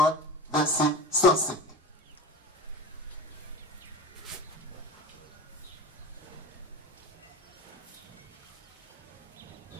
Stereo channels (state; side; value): normal; both; correlation 0.31